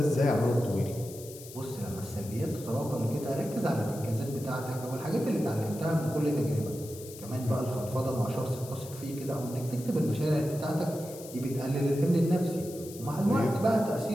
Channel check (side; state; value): left; noise; hiss, 16 dB below the sound